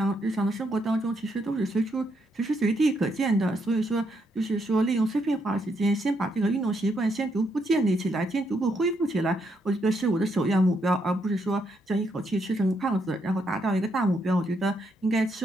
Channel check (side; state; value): both; normal; correlation 0.77